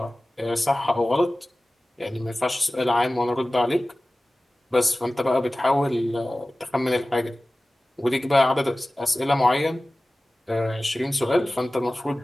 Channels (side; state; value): both; normal; correlation 0.97